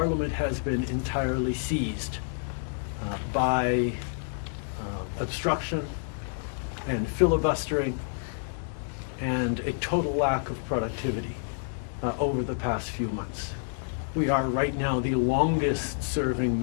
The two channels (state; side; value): silent; right; digital silence